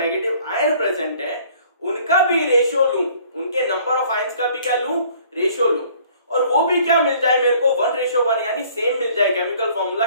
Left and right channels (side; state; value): both; inverted; correlation -0.56